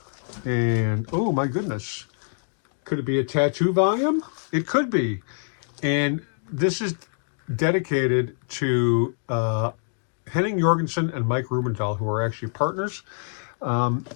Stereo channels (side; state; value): right; silent; 62 dB below the other